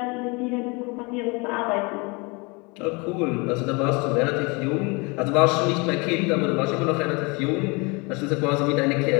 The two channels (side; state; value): right; quieter; 28.5 dB